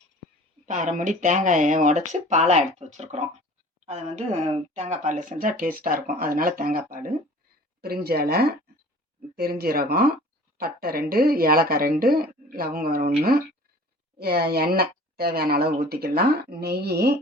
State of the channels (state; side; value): normal; both; correlation 0.45